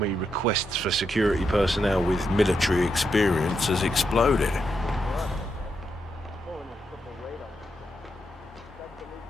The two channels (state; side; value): normal; both; correlation 0.82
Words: requests for security personnel with military experience has exploded.